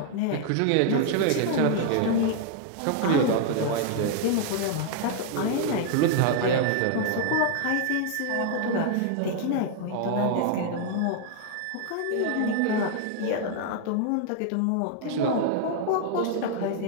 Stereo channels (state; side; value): different; both; correlation 0.00